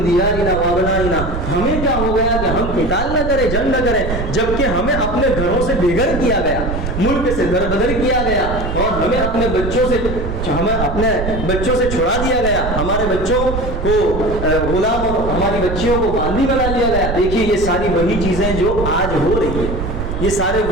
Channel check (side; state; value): right; noise; rumble, 5 dB below the sound